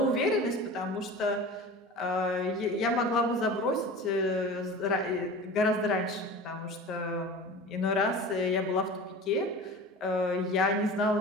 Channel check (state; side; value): normal; both; correlation 0.36